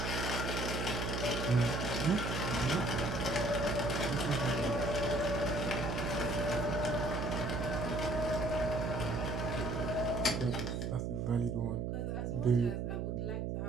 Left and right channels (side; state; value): right; noise; hum, 1 dB below the sound